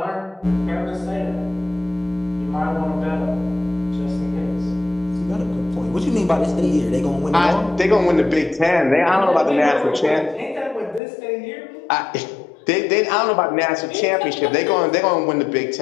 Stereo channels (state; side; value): drops out; right; at 11.0 s